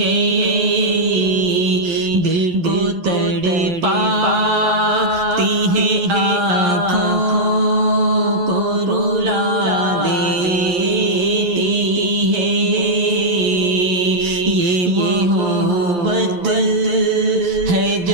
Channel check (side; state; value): left; late; 11 ms